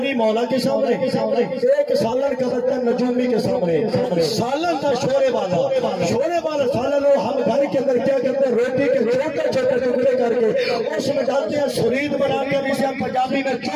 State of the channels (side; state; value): both; identical; correlation 1.00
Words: مولا کے سامنے ایک سالن کا برتن نجومی کے سامنے سالن تھا شورے والا سالن ہو ہم گھر کے اندر کیا کرتے ہیں روٹی کے چھوٹے چھوٹے ٹکڑے کر کے اس میں ڈالتے ہیں سرید بنا کے جسے ہم پنجابی میں